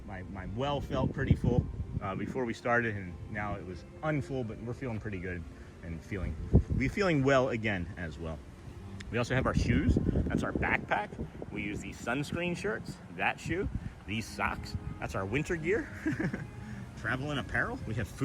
well felt pretty full before we started, and now it was unfull, but we're feeling pretty good and feeling well again as well. We also have our shoes. That's our backpack. We use these sunscreen shirts, that shoe, these socks. That's our winter gear. Traveling apparel. We have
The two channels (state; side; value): identical; both; correlation 1.00